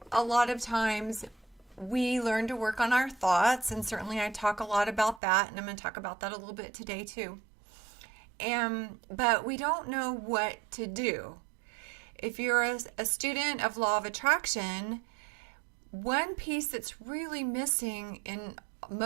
a lot of times we learn to work on our thoughts, and certainly I talk a lot about that, and I'm going to talk about that a little bit today too. But we don't know what to do. If you're a student of law of attraction, one piece that's really missing in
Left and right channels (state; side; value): drops out; left; at 5.2 s